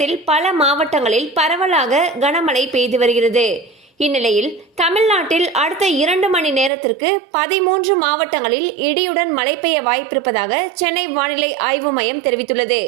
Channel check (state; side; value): drops out; left; at 6.7 s